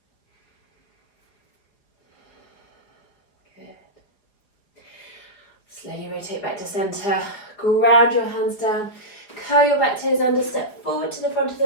Slowly rotate back to centre, ground your hands down, curl your back toes under, step forward to the front of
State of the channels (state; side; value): late; right; 4.9 ms